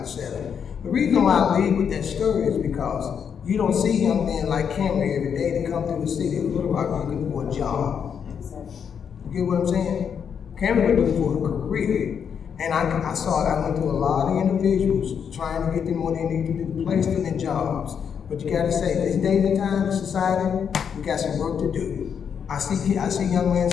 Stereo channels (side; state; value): right; quieter; 7.4 dB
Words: The reason why I lead with that story is because you don't see young men like Cameron every day that come through the city of Little Rock looking for a job. You get what I'm saying? Cameron was looking for a career. And I went through a lot of individuals trying to get them what they need to do, place them in jobs. But you gotta say, this day and time in society, we got some work to do. I see young men